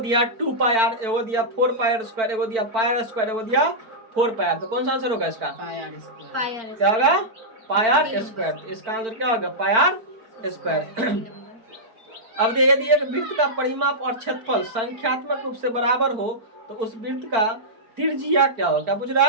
2 पाई आर, एगो दिया 4 पाई आर स्क्वायर, एगो दिया पाई आर स्क्वायर, एगो दिया 4 पाई आर। तो कौन सा आंसर होगा इसका, क्या होगा पाई आर स्क्वायर। इसका आंसर क्या होगा पाई आर स्क्वायर। अब यदि एक वृत्त का परिमाप और क्षेत्रफल संख्यात्मक रूप से बराबर हो तो उस वृत्त का त्रिज्या क्या हो, क्या पूछ रहा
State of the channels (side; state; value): left; late; 4.5 ms